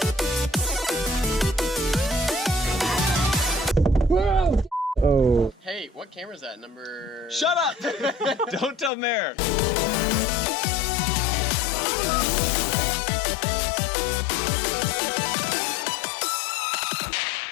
Oh. Hey, what camera is that? Number... Shut up! Don't tell Mayor.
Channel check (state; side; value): drops out; right; at 8.9 s